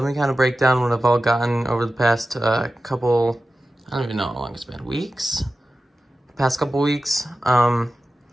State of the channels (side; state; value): both; normal; correlation 0.94